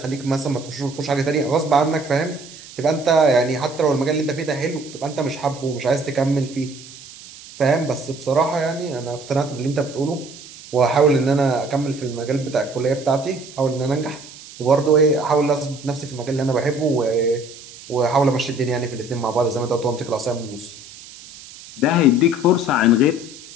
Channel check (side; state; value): right; noise; hiss, 18 dB below the sound